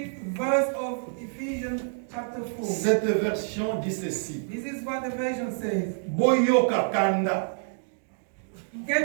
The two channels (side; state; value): left; silent; digital silence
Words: verse of Ephesians chapter 4. Cette version dit ceci. This is what the version says. Boyoka kanda.